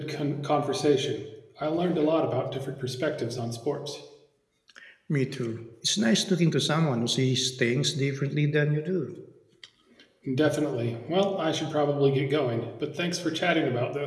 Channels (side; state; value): both; identical; correlation 1.00